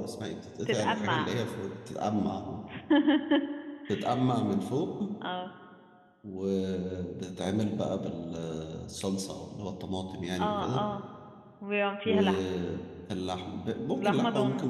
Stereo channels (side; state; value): both; identical; correlation 1.00